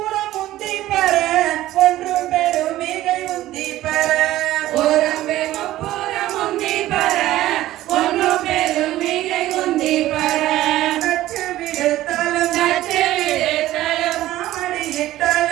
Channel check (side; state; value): left; quieter; 15.0 dB